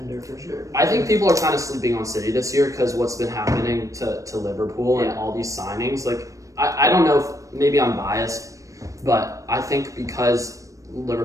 for sure. I think people are kind of sleeping on City this year because what's been happening to Liverpool and all these signings. Like I don't know if maybe I'm biased, but I think because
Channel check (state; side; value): late; left; 0.16 ms